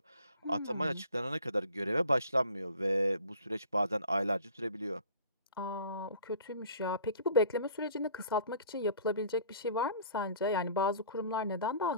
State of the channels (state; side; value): inverted; both; correlation -0.48